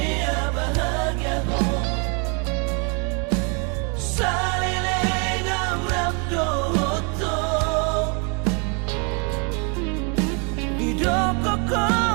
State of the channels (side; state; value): left; quieter; 35.8 dB